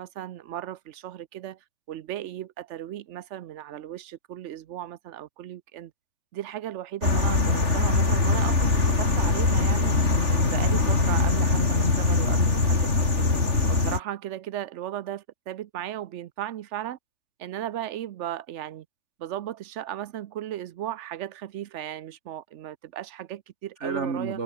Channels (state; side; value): late; left; 3.4 ms